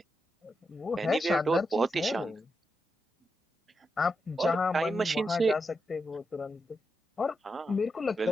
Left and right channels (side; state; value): both; normal; correlation 0.86